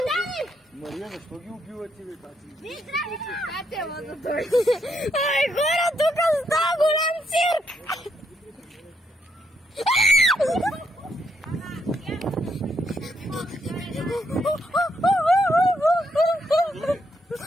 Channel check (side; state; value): both; normal; correlation 0.76